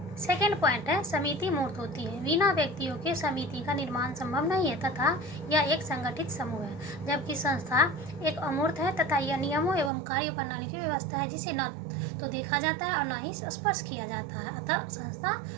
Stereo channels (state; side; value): drops out; left; at 9.9 s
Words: सेकेंड पॉइंट है, समिति मूर्त होती है। बिना व्यक्तियों के समिति का निर्माण संभव नहीं है तथा यह एक संगठित समूह है, जबकि संस्था एक अमूर्त है तथा यह नियमों एवं कार्य प्रणाली की व्यवस्था है जिसे न तो देखा जाता है और न ही स्पर्श किया जाता है, अतः संस्था